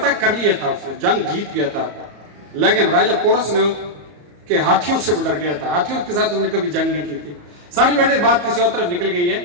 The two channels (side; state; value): left; late; 34 ms